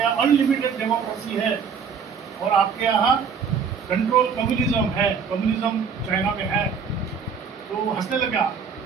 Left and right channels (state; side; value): quieter; left; 6.2 dB